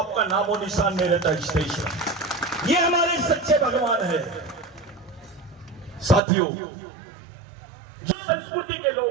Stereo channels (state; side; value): drops out; left; at 6.2 s